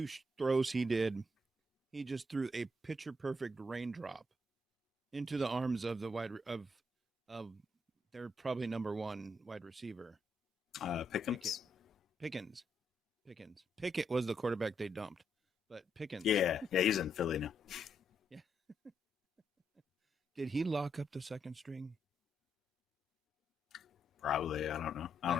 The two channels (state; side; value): normal; both; correlation 0.78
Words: throws he did, he just threw a picture perfect raindrop into the arms of the of their probably number one wide receiver. Pickens? Pickens. Pickett was the quarterback they dumped, but Pickens. Yeah, he's in Philly now. Yeah. Did he lock up the second string? Probably. I don't know. I